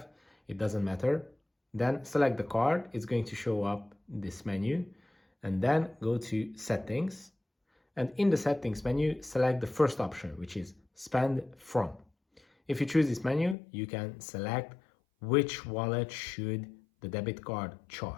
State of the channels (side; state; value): right; drops out; at 13.6 s